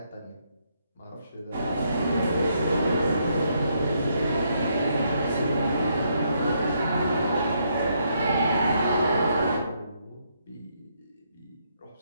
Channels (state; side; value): inverted; both; correlation -0.75